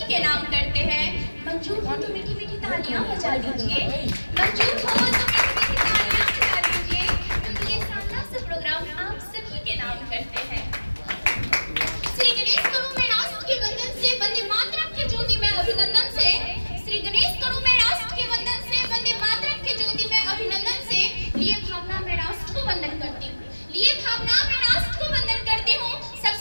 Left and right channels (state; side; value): inverted; both; correlation -1.00